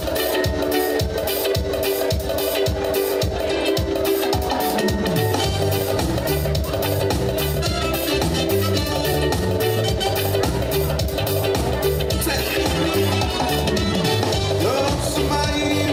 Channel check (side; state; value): both; identical; correlation 1.00